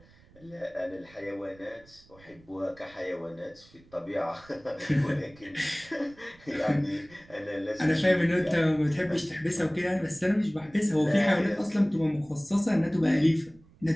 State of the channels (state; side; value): noise; right; rumble, 27 dB below the sound